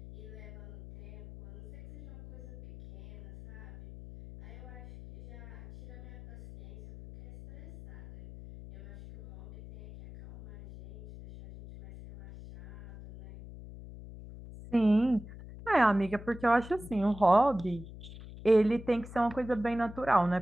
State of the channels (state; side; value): noise; left; hum, 16 dB below the sound